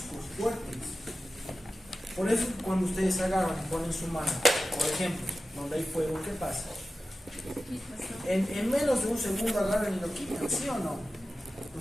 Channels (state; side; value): normal; both; correlation 0.94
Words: fuertes. Por eso, cuando ustedes agarran y ponen su mano, por ejemplo, donde hay fuego, ¿qué pasa? En menos de un segundo agarran y lo quitan, ¿sí o no?